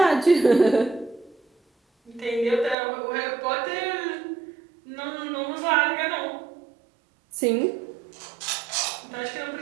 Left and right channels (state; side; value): drops out; left; at 2.8 s